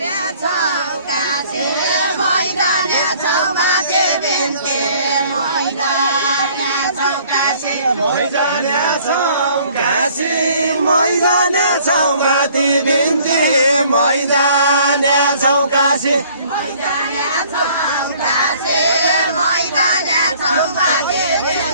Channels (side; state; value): both; inverted; correlation -0.57